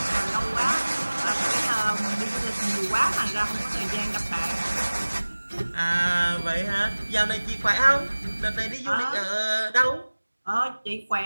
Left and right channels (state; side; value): inverted; both; correlation -1.00